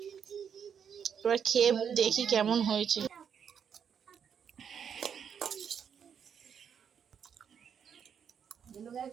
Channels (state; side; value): quieter; left; 7.6 dB